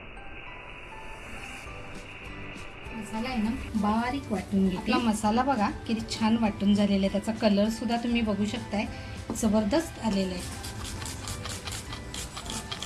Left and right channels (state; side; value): identical; both; correlation 1.00